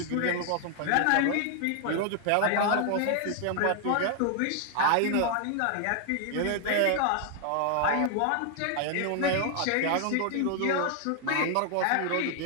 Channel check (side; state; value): both; different; correlation 0.00